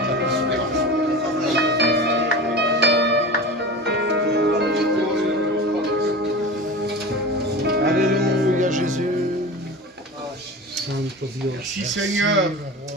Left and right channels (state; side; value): normal; both; correlation 0.31